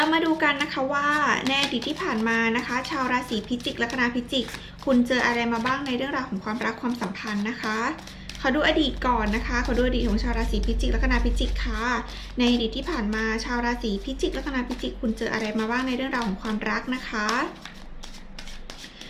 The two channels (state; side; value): identical; both; correlation 1.00